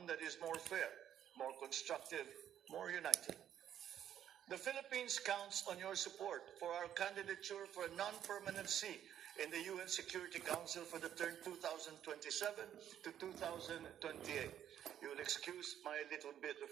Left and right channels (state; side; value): quieter; left; 10.3 dB